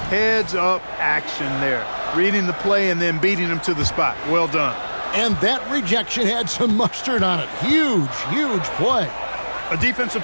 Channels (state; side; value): inverted; both; correlation -1.00